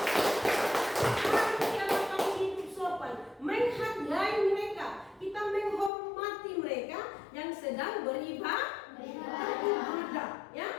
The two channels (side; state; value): right; drops out; at 5.9 s